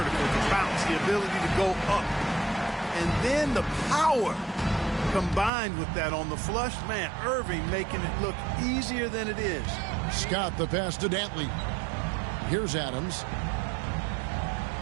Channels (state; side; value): drops out; left; at 5.5 s